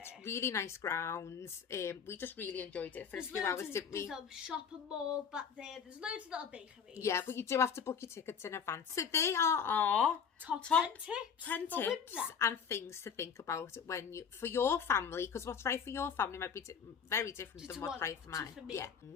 really nice grounds. We just really enjoyed it for a few hours, didn't we? There's a shopping mall back there. There's loads of little bakeries. Yeah, but you do have to book your tickets in advance. So they are our Top 10 tips. 10 for tips Windsor. and things to think about when you, for your family, because what's right for your family might be very different than what's right for mine. For me. Yeah.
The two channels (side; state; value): right; quieter; 6.9 dB